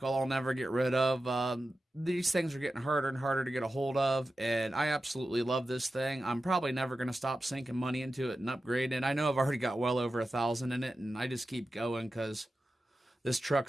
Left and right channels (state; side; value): normal; both; correlation 0.93